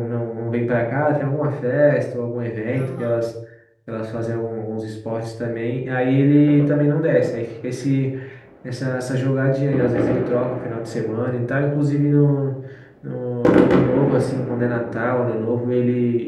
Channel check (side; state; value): both; identical; correlation 1.00